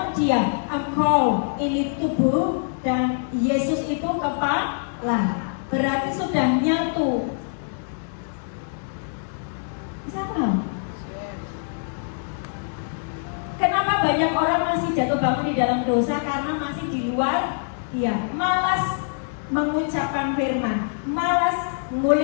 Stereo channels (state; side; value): silent; right; 62 dB below the other